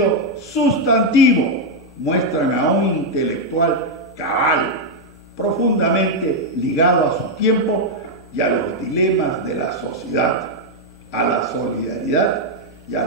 sustantivo muestran a un intelectual cabal, profundamente ligado a su tiempo y a los dilemas de la sociedad, a la solidaridad y a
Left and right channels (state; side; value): normal; both; correlation -0.01